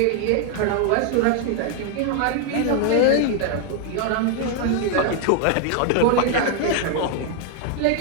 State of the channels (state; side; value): different; both; correlation 0.00